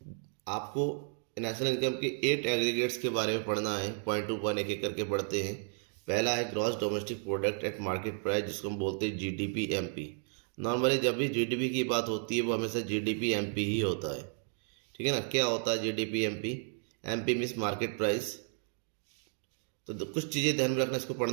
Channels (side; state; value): left; silent; 56 dB below the other